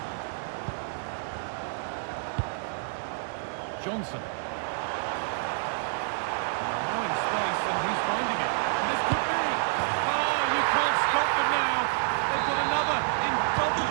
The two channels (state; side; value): silent; left; digital silence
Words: Johnson. Now in space and he's finding it. This could be. Oh, you can't stop them now. They've got another in double